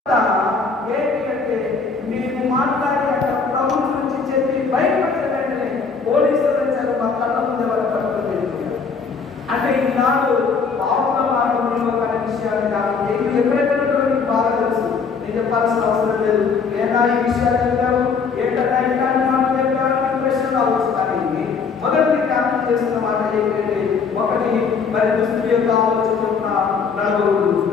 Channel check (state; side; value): quieter; right; 5.3 dB